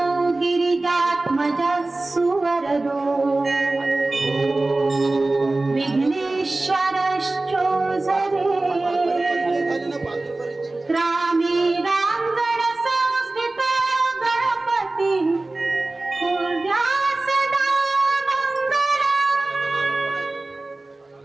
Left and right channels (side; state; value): left; quieter; 3.0 dB